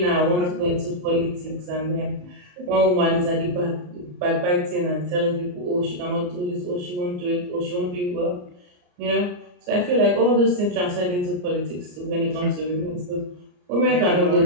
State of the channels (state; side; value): late; left; 34 ms